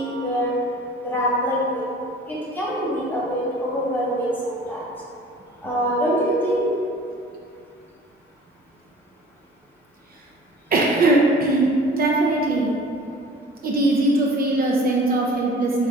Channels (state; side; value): normal; both; correlation 0.46